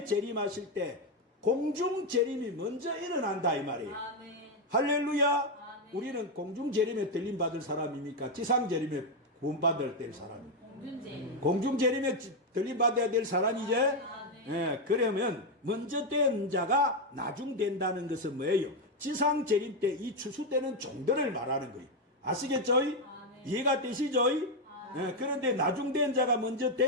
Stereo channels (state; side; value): normal; both; correlation 0.05